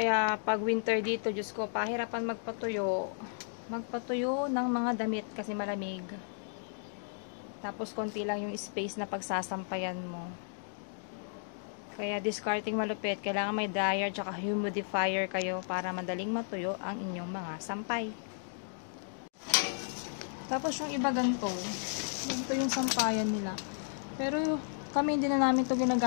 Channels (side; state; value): right; silent; digital silence